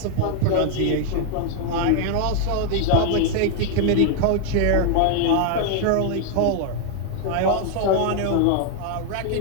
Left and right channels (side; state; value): both; different; correlation 0.00